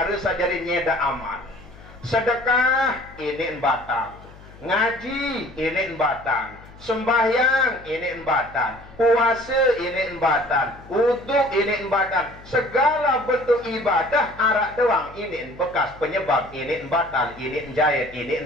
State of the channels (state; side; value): noise; left; hum, 21 dB below the sound